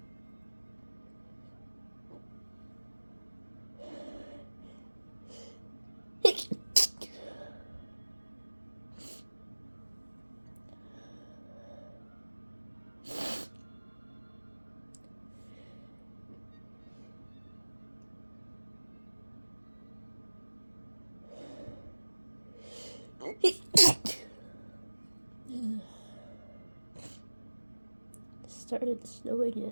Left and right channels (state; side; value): inverted; both; correlation -1.00